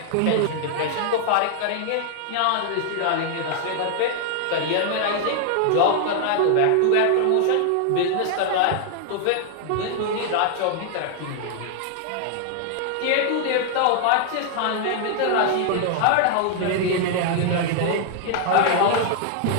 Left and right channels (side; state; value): both; different; correlation 0.00